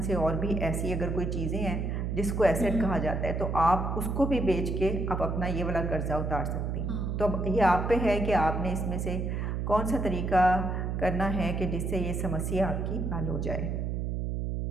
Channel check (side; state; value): right; noise; hum, 1 dB below the sound